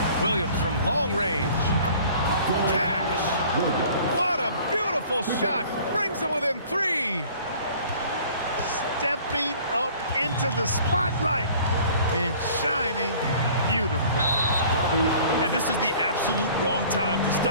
Williams from long range. Cash. What a beautiful shot. Brings him within 3. Stepping up into the spotlight and shining beautifully. And this is the absolute wrong time to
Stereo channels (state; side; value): inverted; both; correlation -0.50